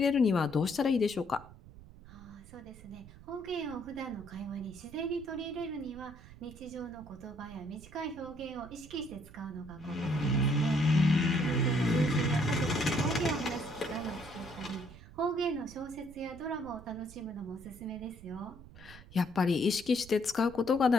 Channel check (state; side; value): noise; right; rumble, 19 dB below the sound